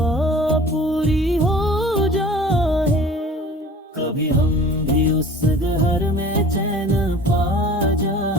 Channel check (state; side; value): normal; both; correlation 0.44